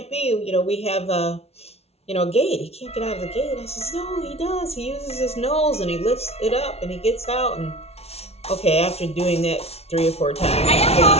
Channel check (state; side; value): late; right; 0.30 ms